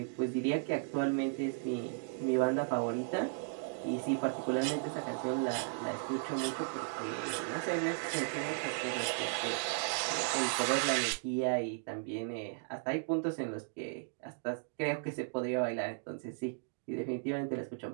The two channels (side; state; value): left; silent; digital silence